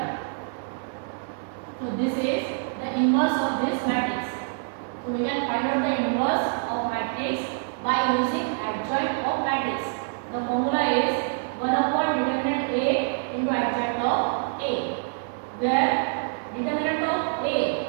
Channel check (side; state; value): left; silent; 56 dB below the other